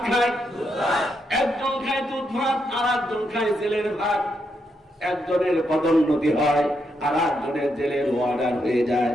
খায়? একজন খায় দুধ ভাত, আর একজন খায় জেলের ভাত। একজনের পদোন্নতি হয়, আর একজনের জেলের অর্ডার হয়ে যায়,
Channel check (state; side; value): normal; both; correlation 0.80